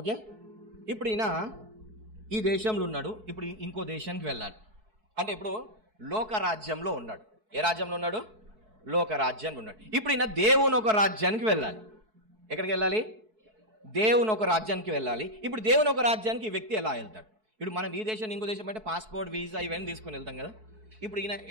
ఇప్పుడు ఈయన ఈ దేశంలో ఉన్నాడు, ఇప్పుడు ఇంకో దేశానికి వెళ్ళాలి అంటే ఇప్పుడు లోక రాజ్యంలో ఉన్నాడు. ఏ రాజ్యంలో ఉన్నాడు? లోక రాజ్యంలో ఉన్నాడు. ఇప్పుడు ఈయన దేవుని ఒక రాజ్యానికి వెళ్ళాలి. ఎక్కడికి వెళ్ళాలి? దేవుని ఒక రాజ్యానికి వెళ్ళాలి. ఇప్పుడు దేవుని ఒక రాజ్యానికి ఈ వ్యక్తి ఎలా వెళ్తాడు? ఇప్పుడు మనం ఈ దేశం ఇంకో దేశం అంటే పాస్పోర్ట్, వీసా ఇవన్నీ తీసుకుని వెళ్తాం కదా. ఇప్పుడు ఈయన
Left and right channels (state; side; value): late; left; 4.6 ms